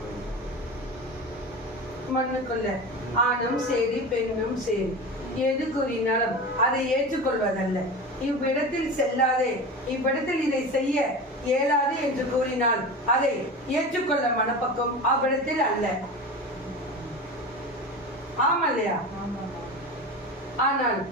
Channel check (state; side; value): normal; both; correlation 0.29